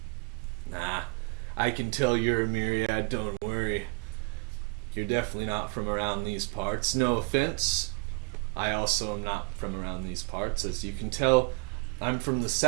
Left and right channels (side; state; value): left; quieter; 33.0 dB